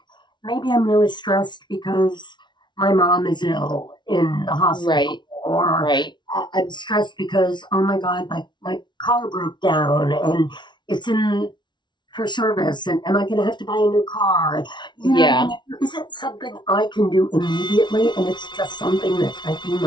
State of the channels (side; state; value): right; late; 0.22 ms